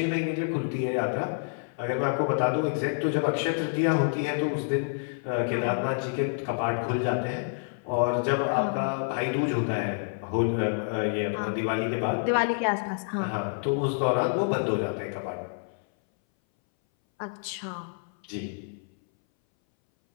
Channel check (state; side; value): silent; right; 59 dB below the other